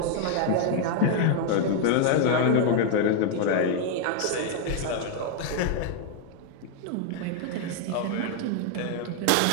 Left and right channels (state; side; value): different; both; correlation 0.00